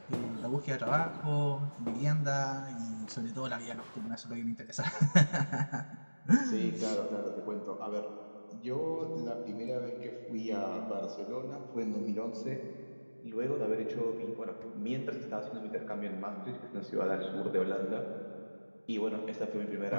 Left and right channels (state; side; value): inverted; both; correlation -1.00